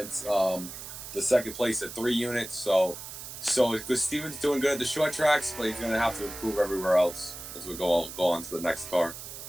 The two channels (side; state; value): right; noise; hiss, 11 dB below the sound